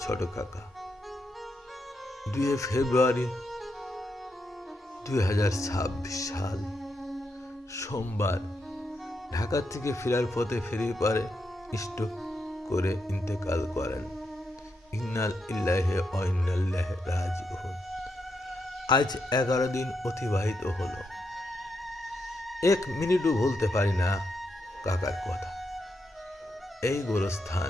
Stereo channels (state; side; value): normal; both; correlation 0.82